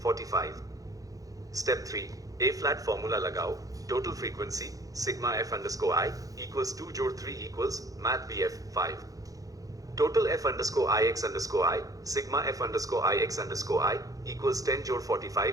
45. Step 3 A flat formula लगाओ, total frequency sigma f underscore I equals 2 जोड़ 3 equals math BF 5. Total f underscore I x underscore I sigma f underscore I x underscore I equals 10 जोड़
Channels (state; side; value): late; left; 0.17 ms